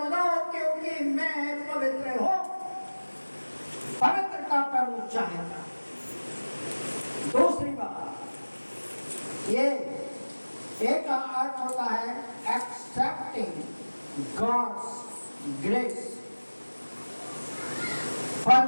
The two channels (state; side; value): inverted; both; correlation -1.00